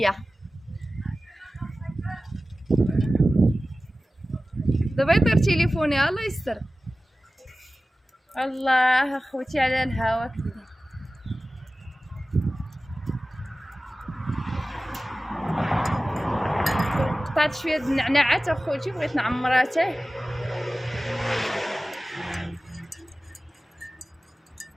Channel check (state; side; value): normal; both; correlation 0.96